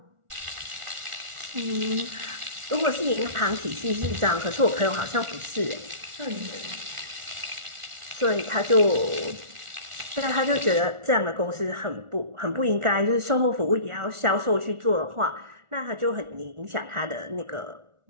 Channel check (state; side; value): late; left; 1.4 ms